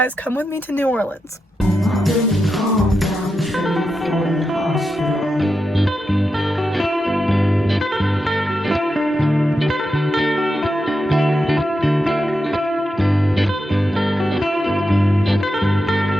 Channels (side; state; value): both; normal; correlation 0.88